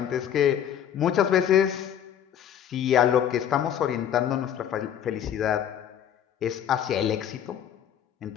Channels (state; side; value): quieter; right; 9.6 dB